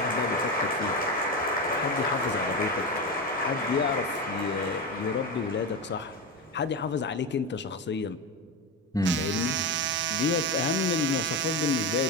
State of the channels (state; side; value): normal; both; correlation 0.17